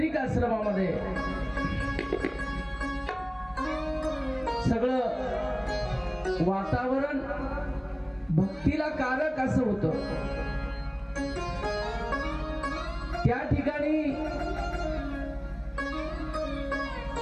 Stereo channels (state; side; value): identical; both; correlation 1.00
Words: आश्रमामध्ये सगळं वातावरण भक्तीला कारक असं होतं. त्या ठिकाणी